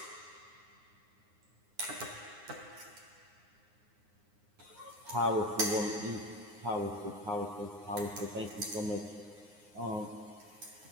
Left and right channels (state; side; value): late; left; 9.6 ms